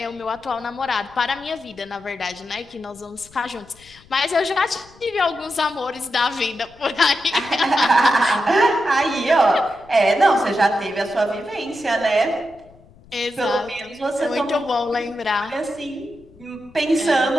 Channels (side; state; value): left; noise; rumble, 26 dB below the sound